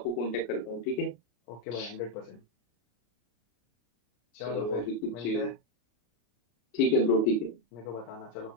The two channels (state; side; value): late; right; 33 ms